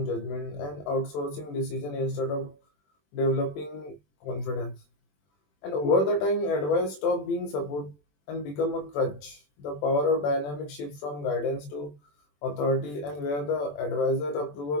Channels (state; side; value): late; right; 20 ms